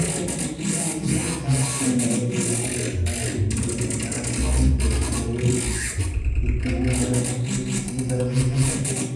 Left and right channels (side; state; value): both; identical; correlation 1.00